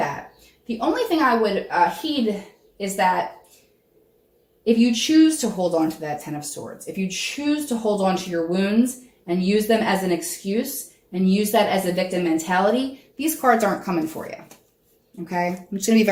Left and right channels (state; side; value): identical; both; correlation 1.00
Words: The only thing I would heed is that if you choose to hold on to that Ten of Swords, if you choose to hold on to your wounds and use them as an excuse and use that as a victim mentality, these cards aren't coming for you. Okay? I'm just going to be